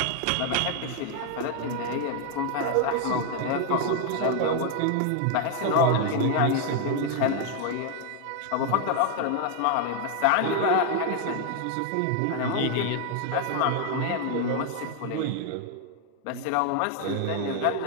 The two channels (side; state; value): both; different; correlation 0.00